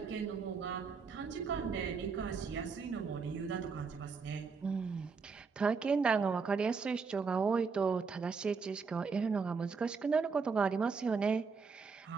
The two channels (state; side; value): quieter; left; 5.1 dB